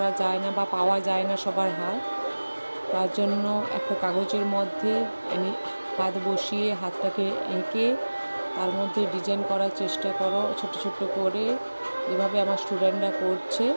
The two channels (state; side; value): inverted; both; correlation -1.00